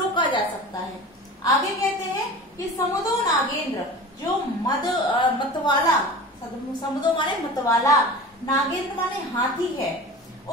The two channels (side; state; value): both; normal; correlation 0.36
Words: जा सकता है। आगे कहते हैं कि समुदो नागेंद्र, जो मतवाला, समुदो माने मतवाला, नागेंद्र माने हाथी है,